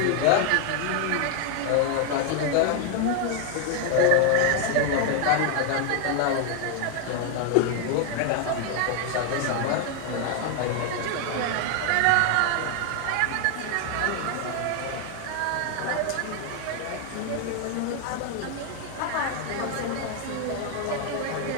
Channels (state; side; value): different; both; correlation 0.01